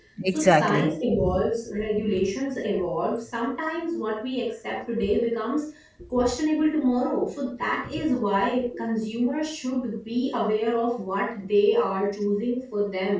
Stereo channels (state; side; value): identical; both; correlation 1.00